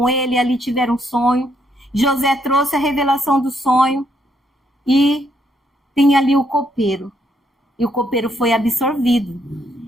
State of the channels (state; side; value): normal; both; correlation 0.74